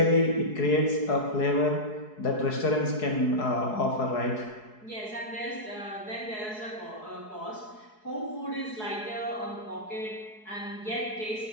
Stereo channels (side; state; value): right; late; 4.7 ms